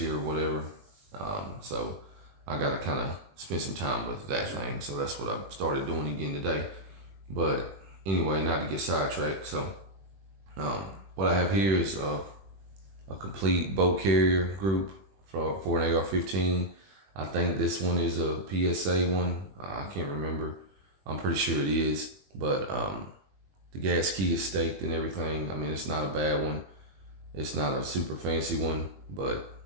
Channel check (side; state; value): left; late; 21 ms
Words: or whatever. So I gotta kind of spend some time with that thing, so that's what I started doing again today. But anyway, not to get sidetracked, so what I have here is a complete boat carrier group for an AR-15. I think this one is a PSA one. I can't remember. I'm pretty sure it is, but the gas key is staked and everything. I mean, it's not a bad one. It's not a super fancy one, but